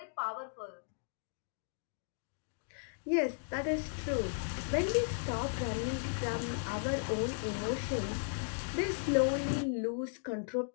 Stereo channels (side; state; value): right; silent; digital silence